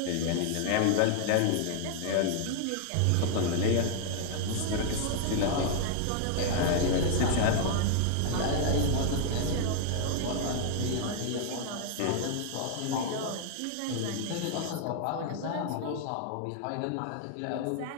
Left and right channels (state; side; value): different; both; correlation 0.00